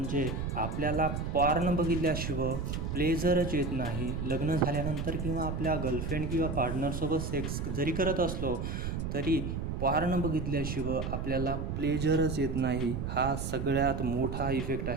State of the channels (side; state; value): right; noise; rumble, 3 dB below the sound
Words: आपल्याला पॉर्न बघितल्याशिवाय प्लेजरच येत नाही. लग्न झाल्यानंतर किंवा आपल्या गर्लफ्रेंड किंवा पार्टनरसोबत सेक्स जरी करत असलो तरी पॉर्न बघितल्याशिवाय आपल्याला प्लेजरच येत नाही. हा सगळ्यात मोठा इफेक्ट